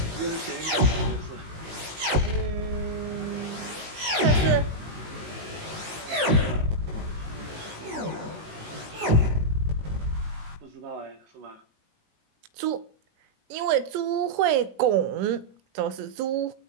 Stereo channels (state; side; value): late; left; 19 ms